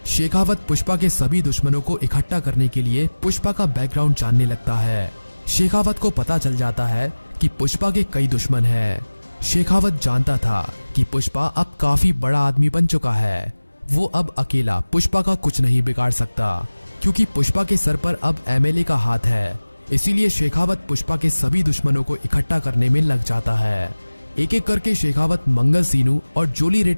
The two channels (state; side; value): inverted; both; correlation -1.00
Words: शेखावत पुष्पा के सभी दुश्मनों को इकट्ठा करने के लिए पुष्पा का बैकग्राउंड जानने लगता है। शेखावत को पता चल जाता है कि पुष्पा के कई दुश्मन हैं। शेखावत जानता था कि पुष्पा अब काफी बड़ा आदमी बन चुका है। वो अब अकेला पुष्पा का कुछ नहीं बिगाड़ सकता, क्योंकि पुष्पा के सर पर अब एमएलए का हाथ है। इसीलिए शेखावत पुष्पा के सभी दुश्मनों को इकट्ठा करने में लग जाता है। एक एक करके शेखावत मंगल सीनू और जोली